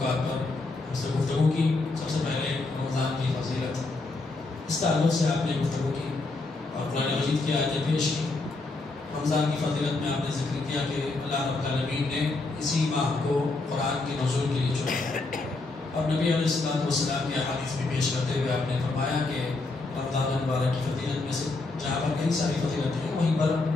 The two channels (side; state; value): right; quieter; 3.4 dB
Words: پر ہم سے گفتگو کی. سب سے پہلے رمضان کی فضیلت، اس تعلق سے آپ نے گفتگو کی اور قرآن مجید کی آیتیں پیش کی. رمضان کی فضیلت میں آپ نے ذکر کیا کہ اللہ رب العالمین نے اسی ماہ کو قرآن کے نزول کے لیے چنا، اور نبی علیہ السلام کی احادیث بھی پیش کرتے ہوئے آپ نے فرمایا کہ رمضان المبارک کی فضیلت میں سے جہاں پر کئی ساری فضیلت ہیں، وہیں پر